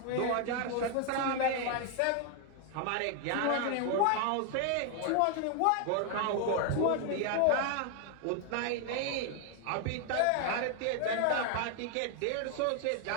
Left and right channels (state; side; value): different; both; correlation 0.00